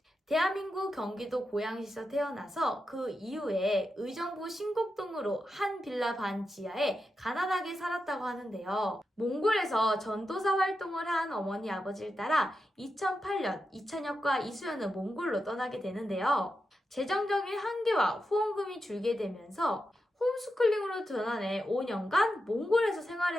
대한민국 경기도 고양시에서 태어나서 그 이후에 의정부 신곡동으로 한 빌라 반 지하에 가난하게 살았다고 하는데요. 몽골에서 전도사 활동을 한 어머니 아버지를 따라 2008년 이찬혁과 이수연은 몽골로 떠나게 되는데요. 재정적인 한계와 후원금이 줄게 되면서 홈스쿨링으로 전환해 5년간 몽골에서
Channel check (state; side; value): normal; both; correlation 0.88